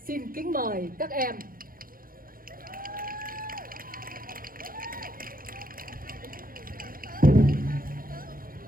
Xin kính mời các em.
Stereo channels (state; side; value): late; left; 0.41 ms